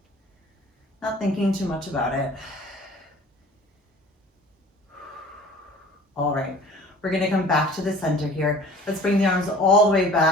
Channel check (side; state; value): both; normal; correlation 0.47